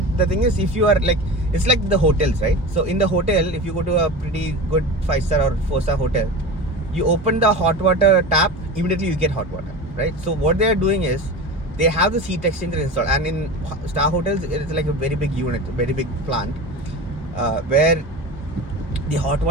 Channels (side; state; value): both; normal; correlation 0.30